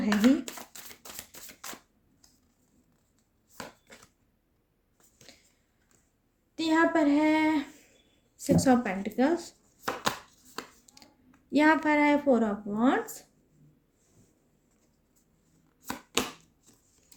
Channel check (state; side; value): identical; both; correlation 1.00